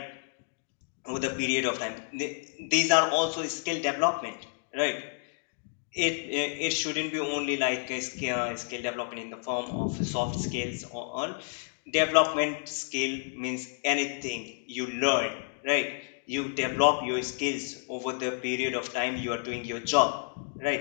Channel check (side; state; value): right; silent; digital silence